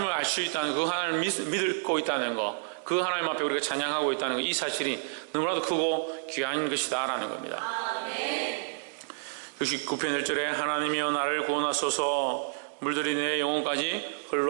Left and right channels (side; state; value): left; silent; digital silence